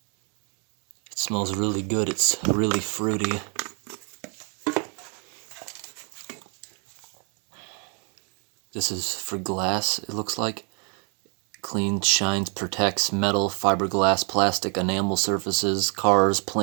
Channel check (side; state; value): left; quieter; 37.9 dB